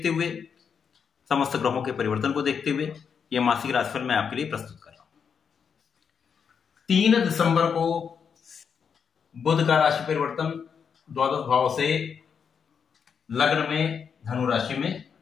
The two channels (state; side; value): quieter; right; 6.7 dB